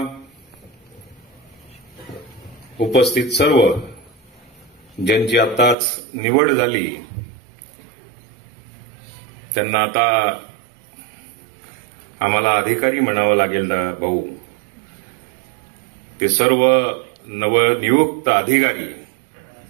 उपस्थित सर्व ज्यांची आताच निवड झाली त्यांना आता आम्हाला अधिकारी म्हणावं लागेल ना भाऊ, ते सर्व नवनियुक्त अधिकारी,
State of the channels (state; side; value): drops out; left; at 5.8 s